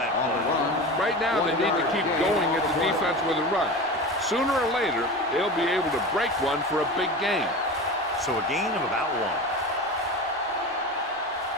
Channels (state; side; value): normal; both; correlation 0.29